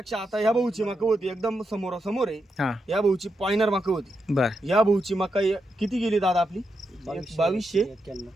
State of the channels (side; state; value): both; normal; correlation 0.85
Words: आता ह्या भाऊची मका होती एकदम समोरासमोर आहे. हा. या भाऊची पॉइनर मका होती. बर. या भाऊची मका किती गेली दादा आपली?